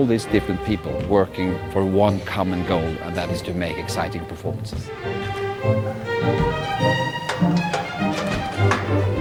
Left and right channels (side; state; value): both; identical; correlation 1.00